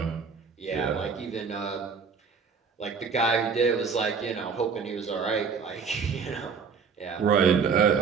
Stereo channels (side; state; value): left; quieter; 5.7 dB